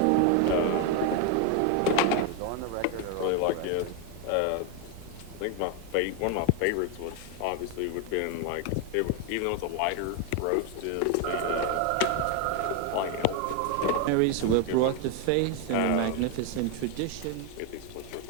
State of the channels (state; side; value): different; both; correlation 0.01